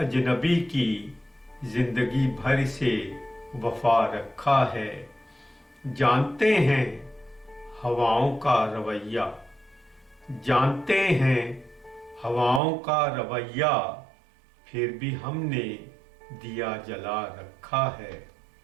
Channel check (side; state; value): left; drops out; at 12.6 s